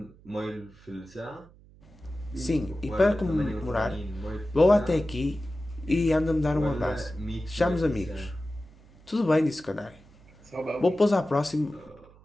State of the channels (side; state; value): right; noise; hum, 25 dB below the sound